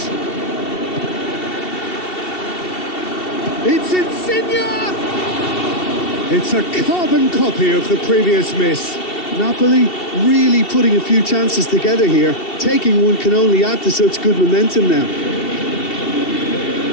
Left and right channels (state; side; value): late; right; 2.7 ms